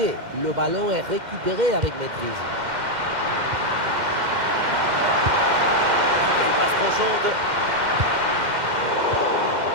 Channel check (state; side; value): late; left; 2.1 ms